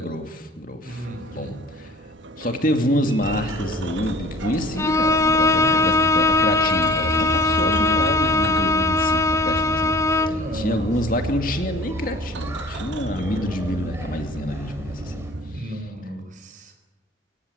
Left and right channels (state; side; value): normal; both; correlation 0.47